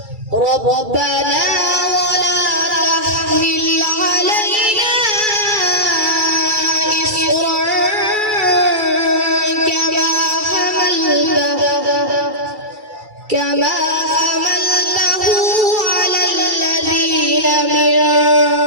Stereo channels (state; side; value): late; left; 2.3 ms